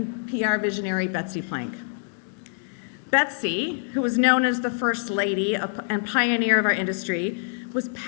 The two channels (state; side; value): silent; right; digital silence